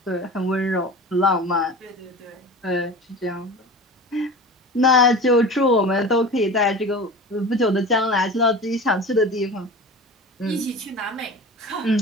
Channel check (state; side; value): normal; both; correlation 0.34